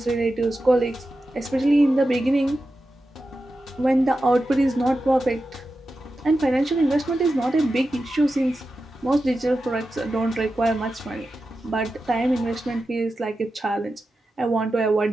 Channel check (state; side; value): normal; both; correlation 0.91